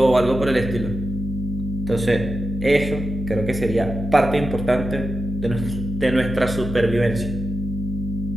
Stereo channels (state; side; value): noise; left; hum, 6 dB below the sound